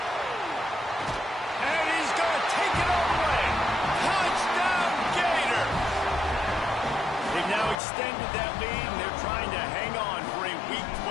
And he's going to take it all the way. Touchdown, Gator. They've now extended that lead, and they're trying to hang on for a Week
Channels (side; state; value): right; drops out; at 7.8 s